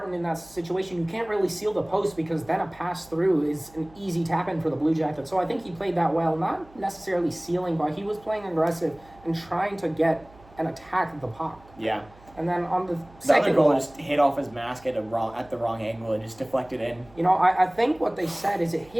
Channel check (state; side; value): noise; right; hum, 25 dB below the sound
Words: in that situation, you can't really seal the post because then a pass through is an easy tap-in for the Blue Jackets. So I think he played that well, not necessarily sealing, but he was playing aggressive and trying to get an attack of the puck. Yeah. And then on the The second other goal just hit off his mask at the wrong angle and just deflected in. you know, I think what they said is it